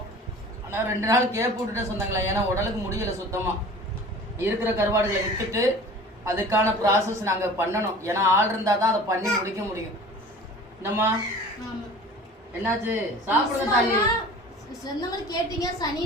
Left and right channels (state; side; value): normal; both; correlation 0.42